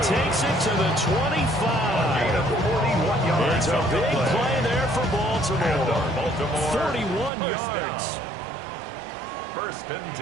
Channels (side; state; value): left; drops out; at 7.3 s